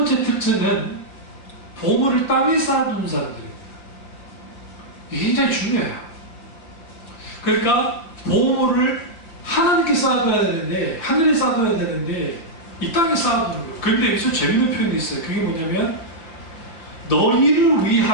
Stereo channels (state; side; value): late; right; 5.8 ms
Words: 특징은 보물을 땅에 쌓아두는 사람들입니다. 이게 굉장히 중요해요. 그러니까 보물을 하나님께 쌓아둬야 되는데, 하늘에 쌓아둬야 되는데 이 땅에 쌓아두는 거예요. 그런데 여기서 재밌는 표현이 있어요. 그게 뭐냐면 너희를